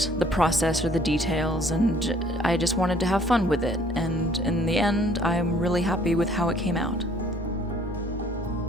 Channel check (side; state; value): both; normal; correlation 0.59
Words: the process or the details, and I just wanted to have fun with it, and in the end, I'm really happy with how it came out.